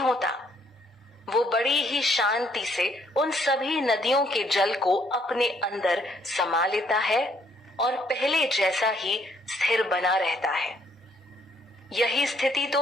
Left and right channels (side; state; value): both; normal; correlation 0.67